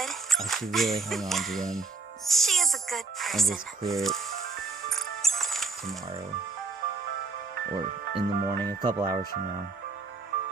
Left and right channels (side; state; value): left; quieter; 4.1 dB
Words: I should really hang on to them she is a good and person. just clear it tomorrow or in the morning, a couple hours from now.